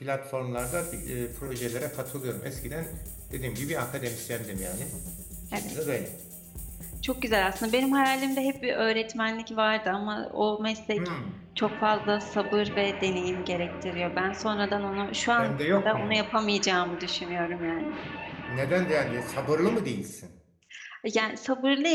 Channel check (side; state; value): both; identical; correlation 1.00